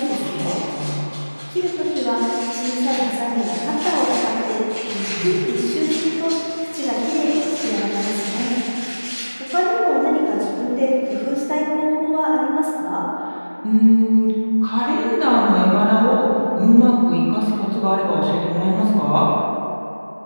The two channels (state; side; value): inverted; both; correlation -1.00